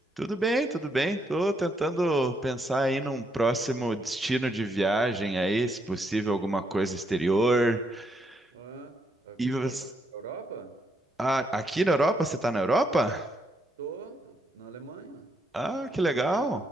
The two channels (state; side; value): normal; both; correlation 0.76